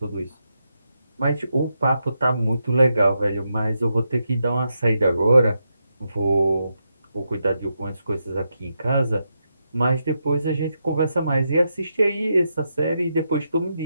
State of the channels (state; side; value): inverted; both; correlation -0.84